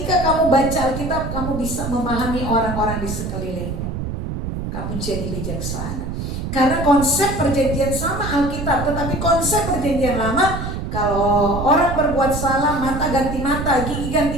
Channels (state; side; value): noise; right; rumble, 5 dB below the sound